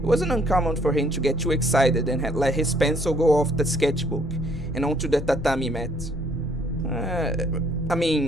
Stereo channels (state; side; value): normal; both; correlation 0.63